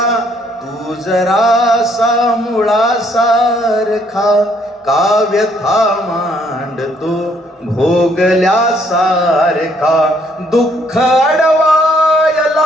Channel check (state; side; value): normal; both; correlation 0.67